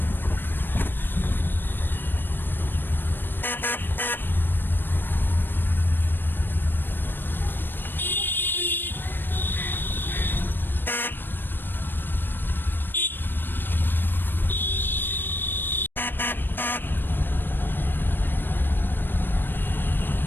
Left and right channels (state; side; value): late; right; 0.095 ms